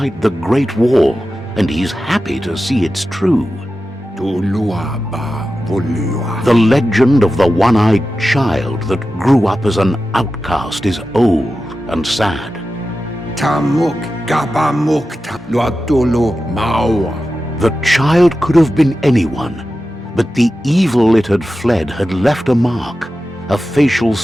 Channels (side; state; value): both; normal; correlation 0.93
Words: the Great Wall, and he's happy to see it's true. Tolua ba, volua. The legend of the one-eyed child that grew up as an outcast is old and sad. Tamuk, gabamuk, luatolo, mawa. The child could have been anyone, but the evil it had fled had left a mark, a facial